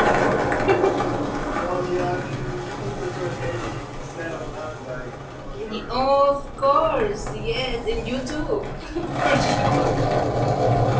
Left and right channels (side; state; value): both; identical; correlation 1.00